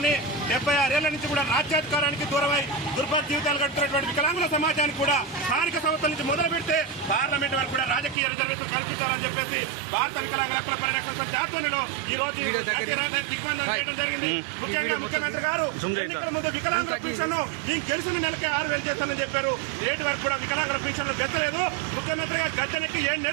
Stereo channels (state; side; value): drops out; left; at 8.2 s